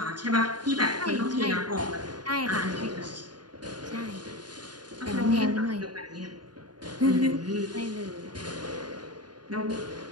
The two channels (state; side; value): late; left; 0.70 ms